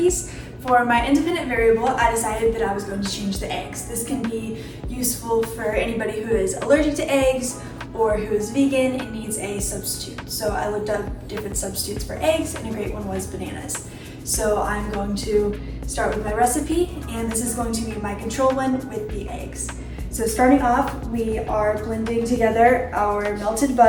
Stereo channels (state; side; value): identical; both; correlation 1.00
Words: For my independent variable, I decided that I was going to change the eggs. This can be useful for anybody who is allergic to eggs or who is vegan and needs a substitute. So I looked up different substitutes for eggs and a great one was bananas. So I'm going to start with my recipe, and this is going to be my control one with the eggs. So starting off, we are blending together our melted